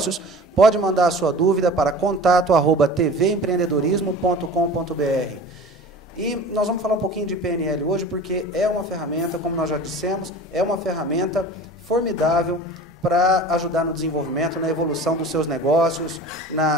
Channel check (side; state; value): both; normal; correlation 0.39